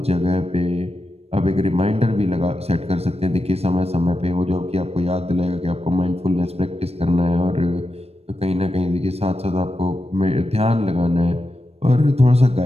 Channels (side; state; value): left; late; 0.30 ms